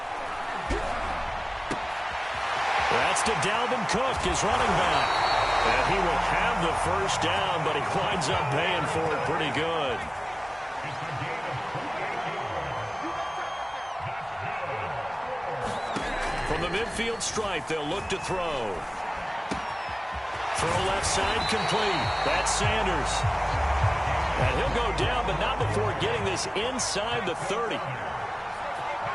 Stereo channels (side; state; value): both; identical; correlation 1.00